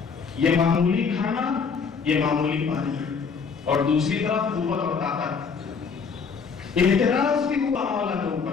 یہ معمولی کھانا، یہ معمولی پانی اور دوسری طرف قوت اور طاقت. اعتراض بھی ہوا مولا کے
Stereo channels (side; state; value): right; quieter; 5.6 dB